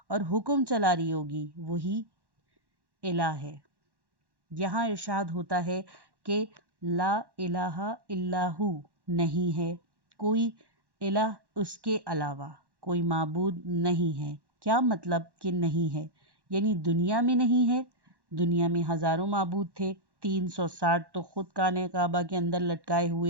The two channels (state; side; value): late; left; 1.1 ms